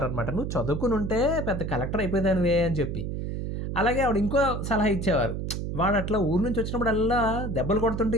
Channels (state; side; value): noise; right; hum, 4 dB below the sound